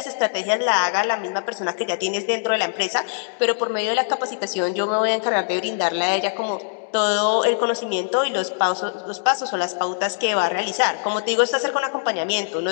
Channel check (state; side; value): silent; right; digital silence